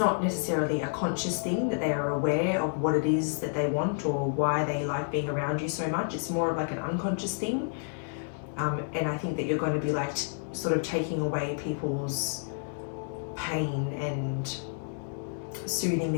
necessarily a conscious thing that they are aware of what it is that they want or why they like being around you so much. It's more of like an unconscious thing. And I think that you're going to be like sort of taking away people's pain and soothing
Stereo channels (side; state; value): right; silent; 58 dB below the other